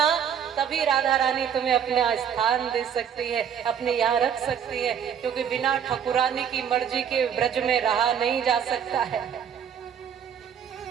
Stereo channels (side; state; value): left; quieter; 8.3 dB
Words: तभी राधा रानी तुम्हें अपना स्थान दे सकती है, अपने यहाँ रख सकती है। क्योंकि बिना ठकुरानी की मर्जी के ब्रज में रहा नहीं जा सकता है।